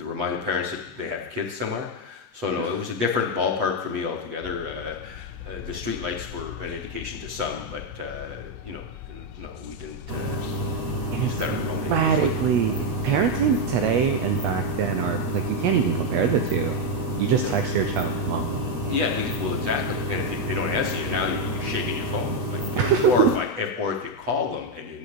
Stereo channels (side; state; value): left; late; 8.2 ms